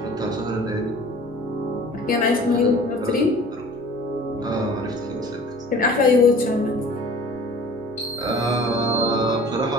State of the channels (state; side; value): normal; both; correlation 0.47